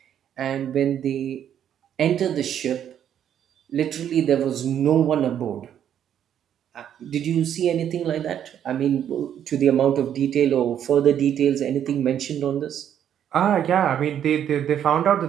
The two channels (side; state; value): left; quieter; 9.7 dB